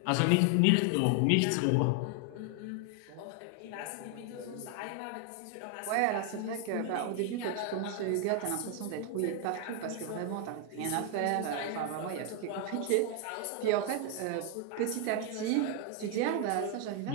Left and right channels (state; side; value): different; both; correlation 0.00